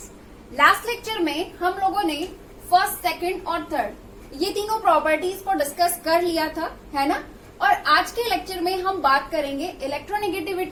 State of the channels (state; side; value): identical; both; correlation 1.00